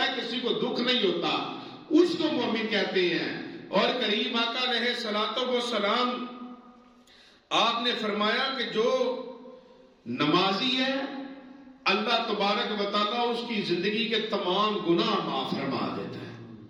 ہے, کسی کو دکھ نہیں ہوتا, اس کو مومن کہتے ہیں. اور کریم آقا علیہ الصلوۃ والسلام آپ نے فرمایا کہ جو نمازی ہے اللہ تبارک و تعالیٰ اس کی زندگی کے تمام گناہ معاف فرما دیتا ہے.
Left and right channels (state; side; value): identical; both; correlation 1.00